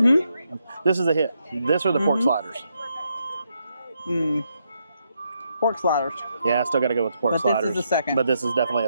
This is a hit. This or the pork sliders. Pork sliders. Yeah, I still got to go with the pork sliders. But this is a second. But this is definitely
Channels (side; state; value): both; inverted; correlation -0.79